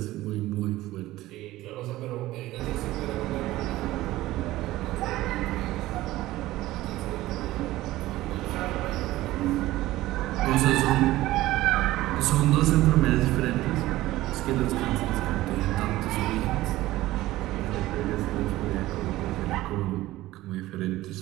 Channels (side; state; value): left; quieter; 16.7 dB